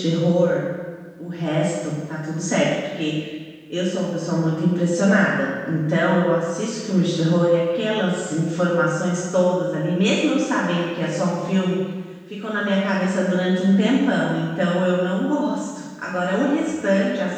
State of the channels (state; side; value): identical; both; correlation 1.00